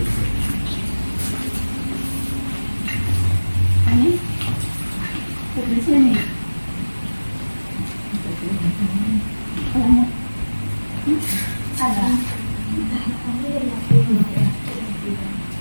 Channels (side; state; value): both; inverted; correlation -1.00